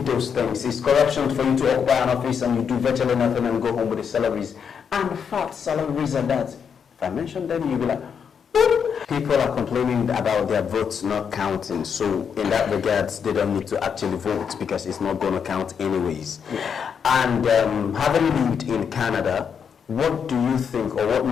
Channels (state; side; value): quieter; right; 7.0 dB